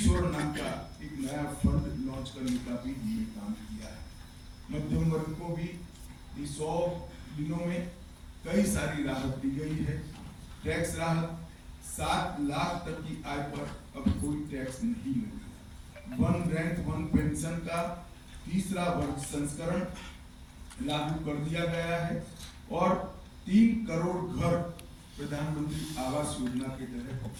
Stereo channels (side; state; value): both; identical; correlation 1.00